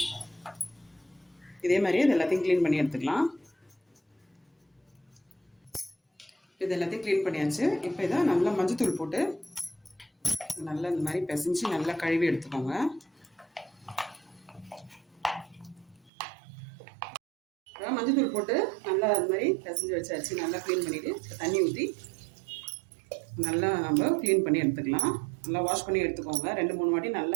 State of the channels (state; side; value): drops out; left; at 16.1 s